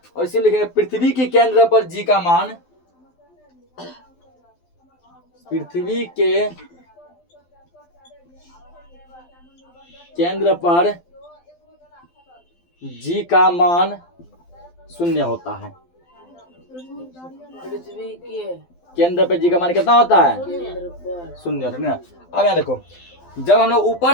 और इसी लिखेंगे पृथ्वी के केंद्र पर जी का मान, पृथ्वी के केंद्र पर जी का मान शून्य होता है। पृथ्वी के केंद्र पे जी का मान कितना होता है? केंद्र पर शून्य होता है ना। अब यहाँ देखो, जब हम लोग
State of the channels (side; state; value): right; late; 12 ms